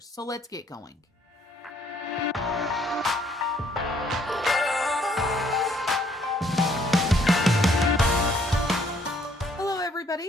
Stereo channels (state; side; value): normal; both; correlation 0.65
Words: So let's get going.